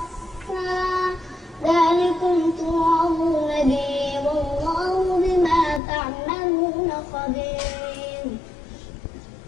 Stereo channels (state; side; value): drops out; right; at 5.8 s